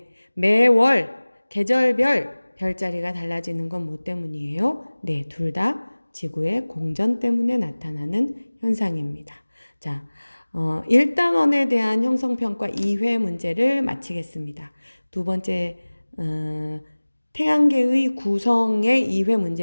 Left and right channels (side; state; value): both; inverted; correlation -1.00